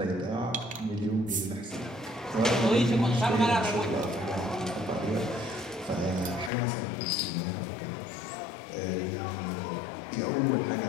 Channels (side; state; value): right; drops out; at 6.5 s